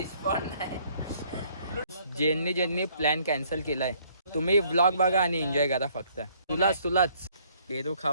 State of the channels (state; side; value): inverted; both; correlation -0.64